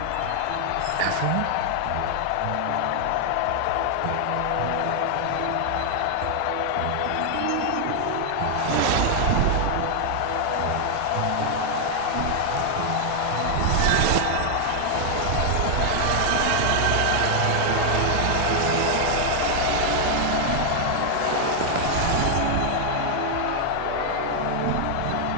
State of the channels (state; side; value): different; both; correlation 0.00